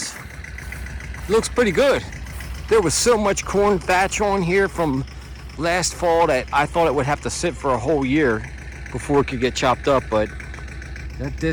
Looks pretty good. There was so much corn thatch on here from last fall that I thought it would have to sit for a whole year before it could get chopped up, but that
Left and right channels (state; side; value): identical; both; correlation 1.00